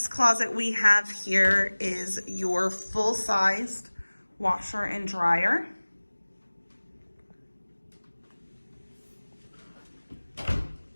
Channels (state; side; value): inverted; both; correlation -1.00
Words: closet we have here is your full-sized washer and dryer.